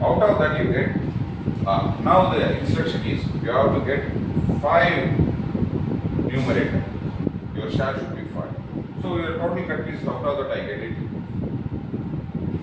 out of that you get, now the instruction is you have to get 5 numerator. Your share should be 5. So your total cut pieces, out of that I get it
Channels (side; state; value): both; identical; correlation 1.00